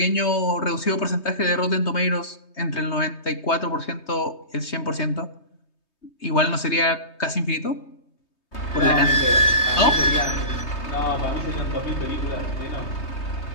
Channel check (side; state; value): right; late; 3.2 ms